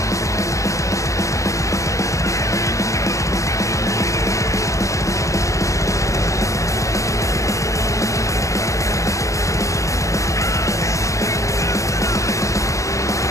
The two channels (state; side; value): late; right; 0.15 ms